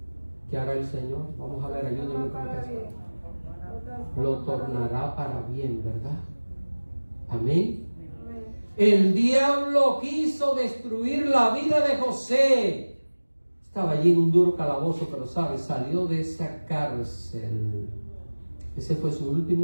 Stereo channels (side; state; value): both; inverted; correlation -1.00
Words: ¿qué hará el Señor? Vamos a ver, ayúdenme con Para esto. bien. Lo tornará para bien, ¿verdad? Amén. Amén. El diablo quiso destruir la vida de José. Estaba allí en un duro calabozo, pero ¿sabes? Salió de esa cárcel. Ese fue su último